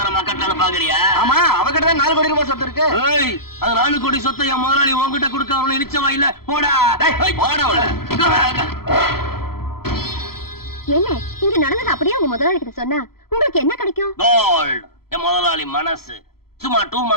கட்டலான்னு பாக்குறியா? ஆமா, அவகிட்ட தான் 4 கோடி ரூபாய் சொத்து இருக்கு. அது 4 கோடி சொத்தை என் முதலாளி உங்ககிட்ட கொடுக்க அவனு நிச்சயமா இல்ல. போடா போடா. என்ன இங்க நடந்தது அப்படியே உங்க முதலாளி கிட்ட சொன்னா உங்களுக்கு என்ன கிடைக்கும்? கோல்ட். என் முதலாளி மனசு. சும்மா 2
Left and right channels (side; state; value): right; late; 0.94 ms